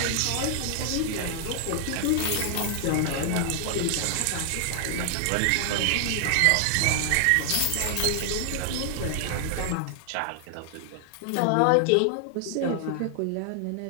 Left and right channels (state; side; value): different; both; correlation 0.00